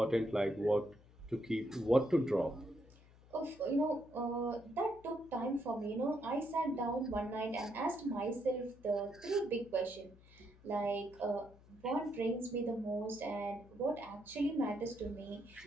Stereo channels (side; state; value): left; noise; hum, 24 dB below the sound